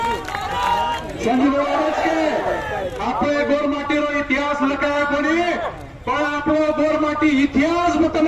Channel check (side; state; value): both; identical; correlation 1.00